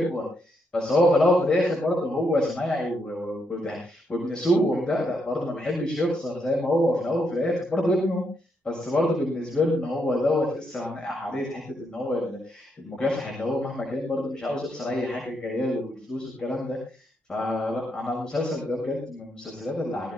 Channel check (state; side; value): normal; both; correlation 0.78